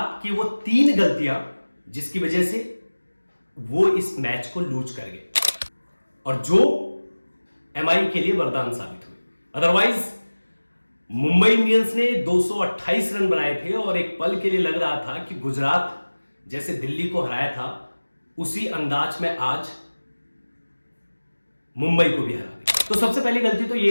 की वो 3 गलतियां जिसकी वजह से वो इस मैच को लूज कर गए और जो एमआई के लिए वरदान साबित हुए। अदरवाइज मुंबई इंडियंस ने 228 रन बनाए थे और एक पल के लिए लग रहा था कि गुजरात जैसे दिल्ली को हराया था उसी अंदाज में आज मुंबई को भी हरा दिया। तो सबसे पहली गलती तो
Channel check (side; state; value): both; inverted; correlation -1.00